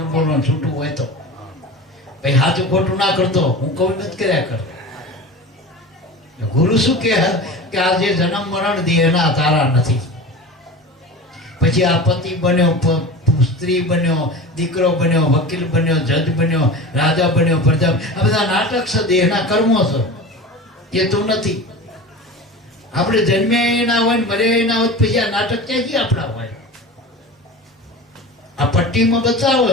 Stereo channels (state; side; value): normal; both; correlation 0.33